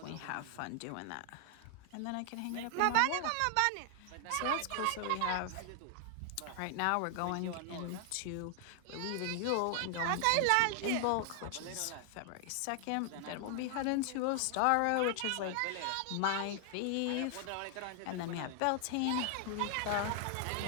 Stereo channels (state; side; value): different; both; correlation 0.00